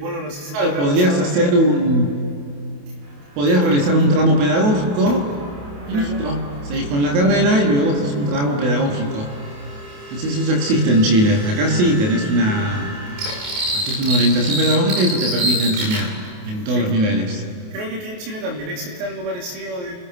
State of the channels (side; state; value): left; late; 28 ms